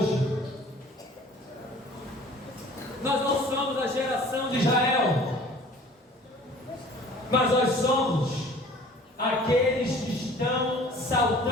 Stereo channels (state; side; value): normal; both; correlation 0.48